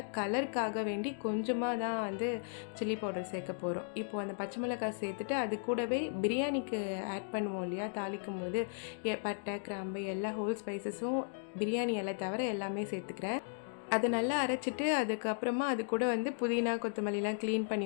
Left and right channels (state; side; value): silent; right; digital silence